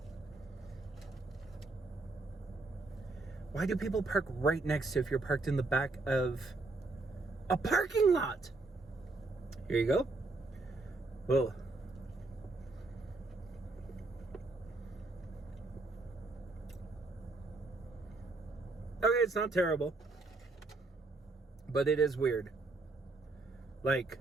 Why do people park right next to if you're parked in the back of a parking lot? Here you go. Whoa. Okay, it's not terrible. But it is weird. Like,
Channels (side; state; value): left; quieter; 3.3 dB